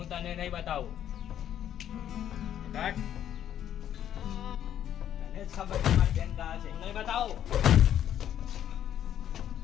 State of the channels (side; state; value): right; quieter; 10.5 dB